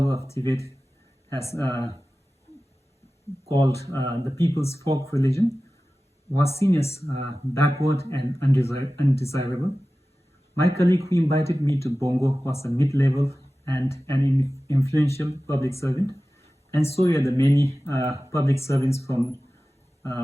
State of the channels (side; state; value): both; normal; correlation 0.96